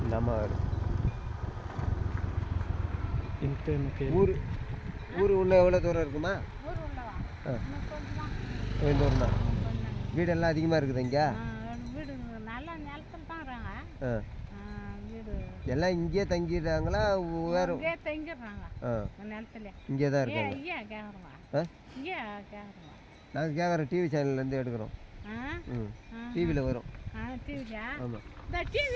நம்ம ஊர் ஊர் உள்ள எவ்வளோ தூரம் இருக்குமா? தூரம் தான். வீடெல்லாம் அதிகமாக இருக்குது இங்கே? வீடு நல்லா நிலத்தில் தான் இருக்காங்க. வீடு எல்லாம் இங்கேயே தங்கிடுறாங்களா? வேறு இங்கே தங்கிடுறாங்க. நிலத்துல இங்கே தான் இருக்காங்க. ஐயா கேட்குறோம். இங்கே கேட்குறோம். நாங்கள் கேட்குறோம், டிவி சேனல்லேருந்து எடுக்கிறோம். டிவியில் வரும். டிவியா? ஆமாம். இந்த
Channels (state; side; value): identical; both; correlation 1.00